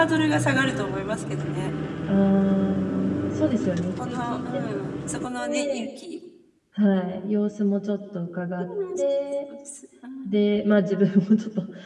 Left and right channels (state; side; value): identical; both; correlation 1.00